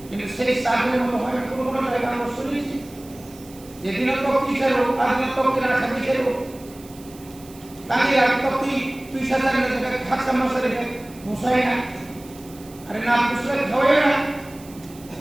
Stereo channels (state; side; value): noise; right; hiss, 22 dB below the sound